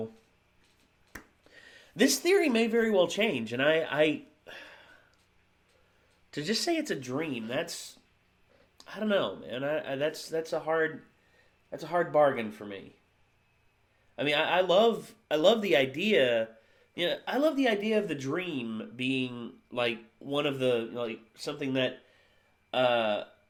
this theory may very well change, and I to just say it's a dream, I don't know, man. That's a hard bargain for me. I mean, I love the idea. I love the idea of the dream being like one of the something that.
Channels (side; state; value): both; identical; correlation 1.00